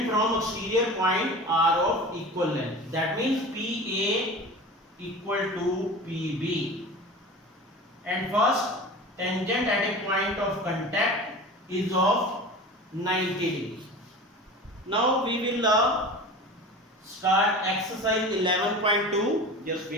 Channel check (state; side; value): normal; both; correlation 0.34